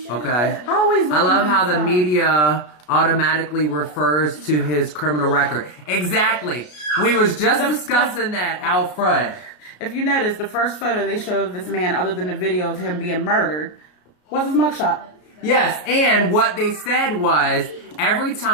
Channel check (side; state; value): right; late; 33 ms